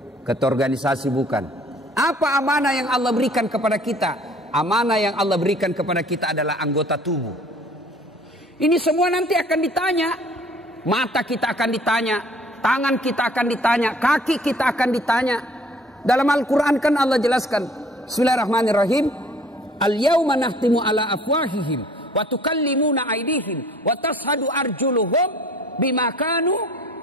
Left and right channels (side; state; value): both; normal; correlation 0.53